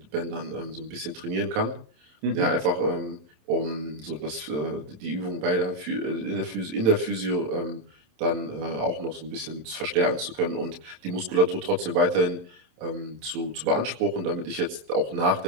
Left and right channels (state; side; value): late; left; 27 ms